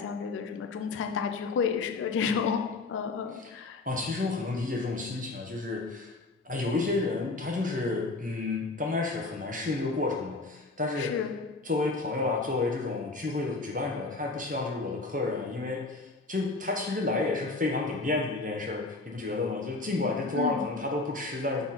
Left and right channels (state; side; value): quieter; right; 3.4 dB